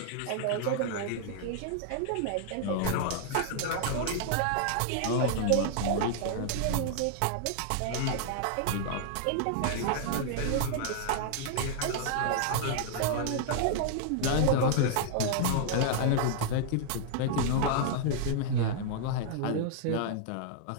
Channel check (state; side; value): different; both; correlation -0.01